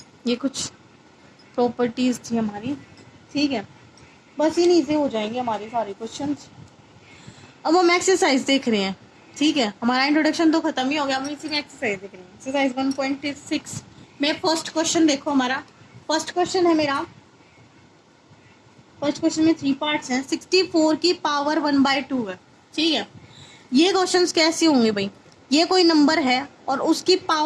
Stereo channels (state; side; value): identical; both; correlation 1.00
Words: ये कुछ प्रॉपर्टीज थी हमारी, ठीक है। बस इन्हीं से हो जाएंगे हमारे सारे क्वेश्चंस। अब हम एक्सरसाइज देख रहे हैं, ठीक है। हमारा इंट्रोडक्शन तो खत्म ही हो गया, हम इसी में एक्सरसाइज देख रहे हैं। एक्सरसाइज 1.6 में फर्स्ट क्वेश्चन देखो, हमारा फर्स्ट क्वेश्चन है मेरा। फर्स्ट क्वेश्चन में 3 पार्ट्स हैं। 64 की पावर 1/2 है, ठीक है। ये क्वेश्चंस कैसे होंगे भाई, ये कोई नंबर है और उसकी